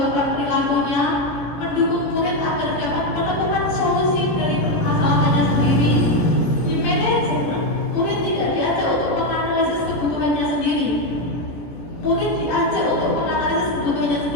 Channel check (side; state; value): right; late; 17 ms